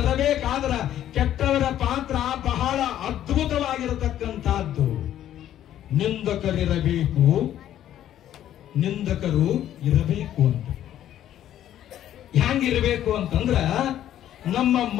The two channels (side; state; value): right; quieter; 11.6 dB